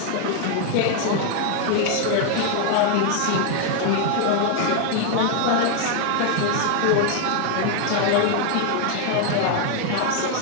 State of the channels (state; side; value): different; both; correlation 0.00